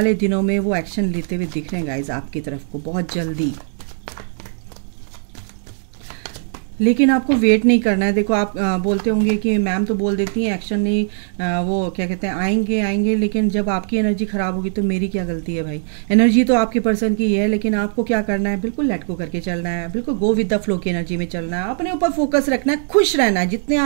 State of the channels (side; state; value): left; silent; digital silence